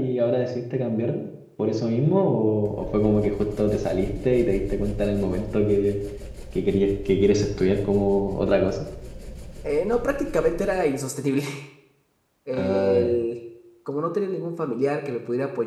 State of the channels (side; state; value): both; identical; correlation 1.00